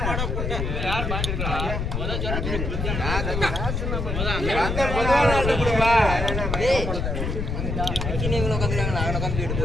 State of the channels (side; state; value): left; noise; rumble, 2 dB below the sound